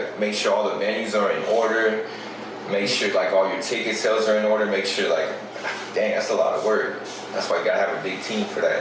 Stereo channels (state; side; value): identical; both; correlation 1.00